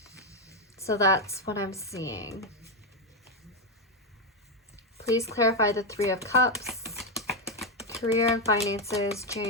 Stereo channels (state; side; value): normal; both; correlation 0.05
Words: So that's what I'm seeing. Please clarify the 3 of Cups, career and finances,